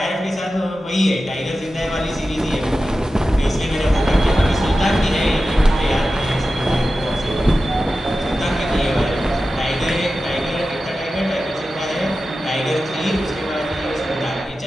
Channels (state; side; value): normal; both; correlation 0.93